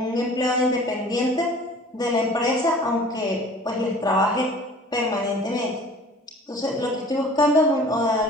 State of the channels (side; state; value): both; normal; correlation 0.47